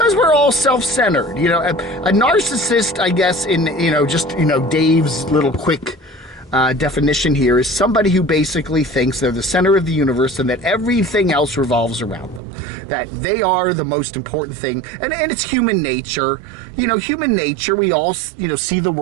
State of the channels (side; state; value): left; drops out; at 12.4 s